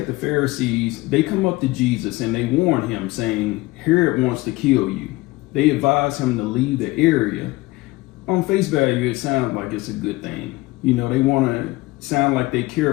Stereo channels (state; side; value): quieter; right; 20.6 dB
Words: the Pharisees, they come up to Jesus and they warn him, saying, "Herod wants to kill you." They advise him to leave the area. On face value, it sounds like it's a good thing. They want to sound like they